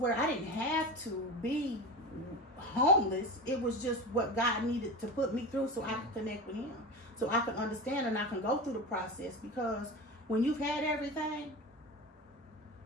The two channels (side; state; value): both; normal; correlation 0.27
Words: I didn't have to be homeless. It was just what God needed to put me through so I could connect with him, so I could understand and I can go through the process. Because when you've had everything,